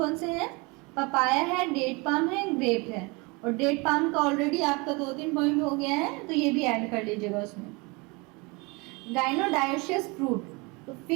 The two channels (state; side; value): quieter; left; 27.5 dB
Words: से हैं, पपाया है, डेट पाम है, ग्रेप है। और डेट पाम का ऑलरेडी आपका 2-3 पॉइंट हो गया है तो ये भी ऐड कर लीजिएगा उसमें। गाइनोडायोशियस फ्रूट, तो